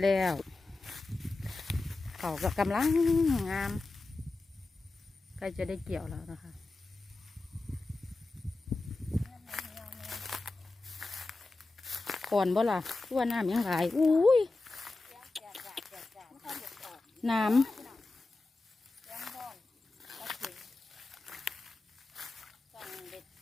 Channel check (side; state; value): right; quieter; 3.3 dB